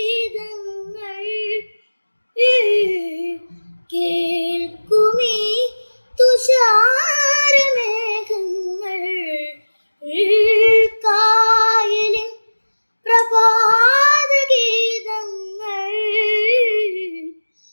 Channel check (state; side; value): inverted; both; correlation -1.00